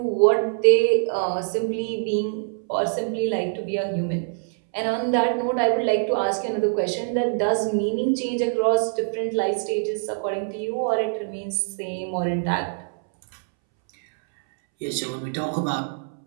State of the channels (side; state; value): left; silent; 63 dB below the other